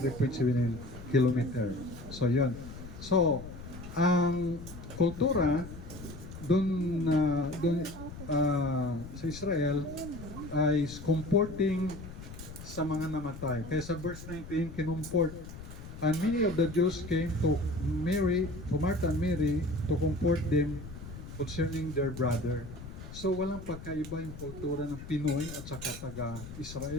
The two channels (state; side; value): noise; left; rumble, 12 dB below the sound